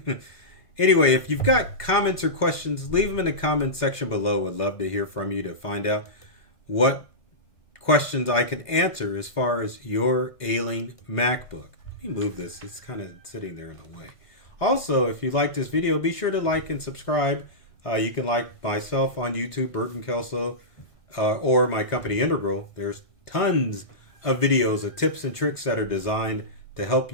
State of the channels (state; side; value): late; right; 1.6 ms